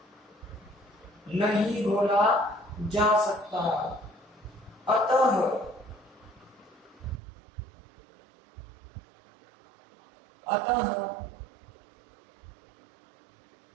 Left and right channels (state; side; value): drops out; left; at 7.2 s